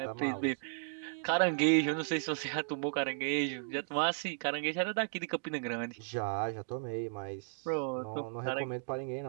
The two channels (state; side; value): silent; left; digital silence